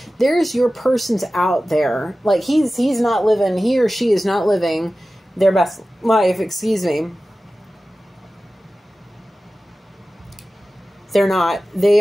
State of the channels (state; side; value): normal; both; correlation 0.95